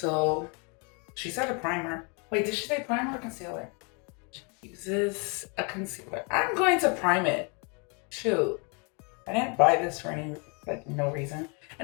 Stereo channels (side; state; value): right; quieter; 34.0 dB